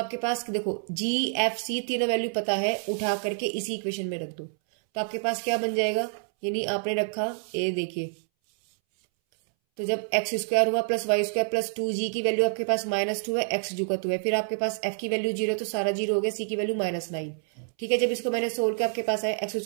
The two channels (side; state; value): left; silent; 60 dB below the other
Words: पास देखो g f c तीनों वैल्यू पता है, उठा करके इसी इक्वेशन में रख दो। तो आपके पास क्या बन जाएगा, यानी आपने रखा, ये देखिए तो जब एक्स स्क्वायर हुआ plus Y square plus 2g की वैल्यू आपके पास -2 है, एक्स जू का 2 है, फिर आपके पास f की वैल्यू 0 तो सारा 0 हो गया, c की वैल्यू -9। ठीक है, जब इसको मैंने सोल्व किया आपके पास आया x